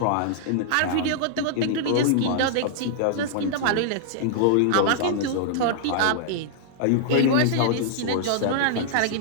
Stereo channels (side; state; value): both; different; correlation -0.01